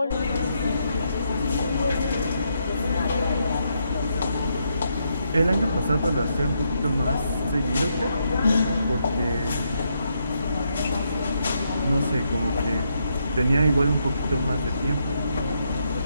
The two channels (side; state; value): both; inverted; correlation -0.78